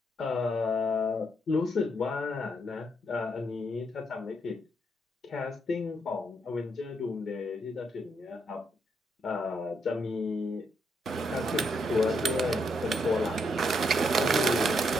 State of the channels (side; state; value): both; normal; correlation 0.77